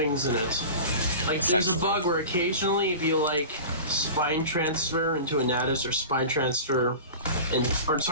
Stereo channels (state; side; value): inverted; both; correlation -0.34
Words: in it. Like there's a Essentially. bug where occasionally if you like spine transfer into a Natus or spine transfer